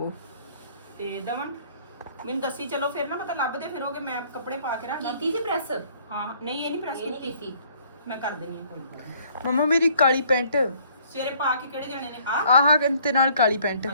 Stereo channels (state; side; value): inverted; both; correlation -0.61